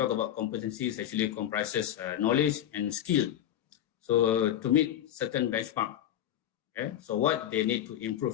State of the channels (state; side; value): quieter; right; 11.4 dB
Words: about competency, is actually comprises knowledge and skill. So to meet certain benchmark, okay? So what they need to